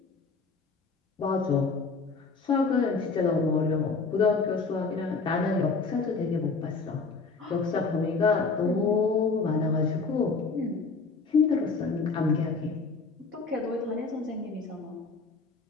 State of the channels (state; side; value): quieter; right; 4.4 dB